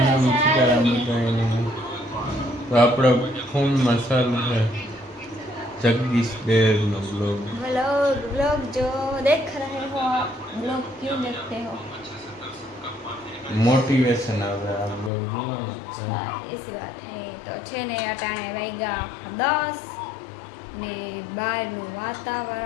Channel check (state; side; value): drops out; right; at 15.1 s